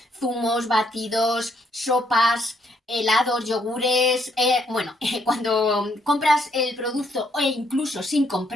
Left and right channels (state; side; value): normal; both; correlation 0.72